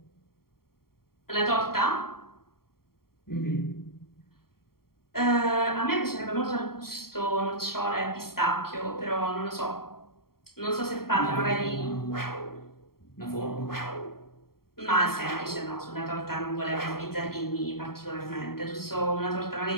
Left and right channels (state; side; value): late; right; 0.93 ms